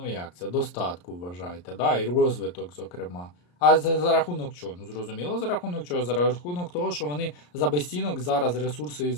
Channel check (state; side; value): late; right; 34 ms